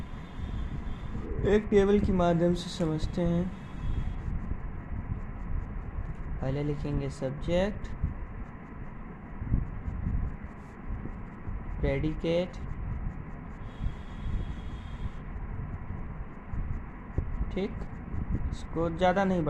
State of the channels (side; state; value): both; identical; correlation 1.00